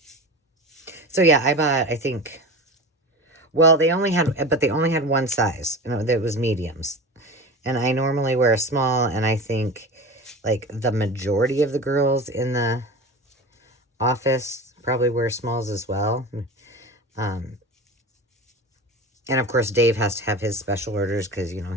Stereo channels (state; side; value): normal; both; correlation 0.31